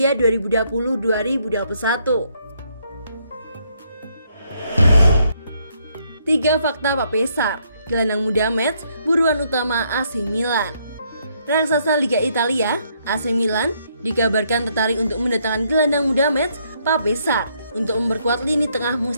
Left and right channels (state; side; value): inverted; both; correlation -0.72